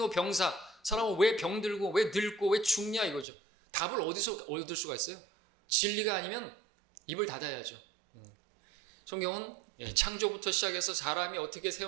사람은 왜 병들고 왜 늙고 왜 죽냐 이거죠. 답을 어디서 얻을 수가 있어요? 진리가 아니면 입을 닫아야죠. 성경은 창조부터 시작해서 사람이 어떻게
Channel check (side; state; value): left; drops out; at 3.2 s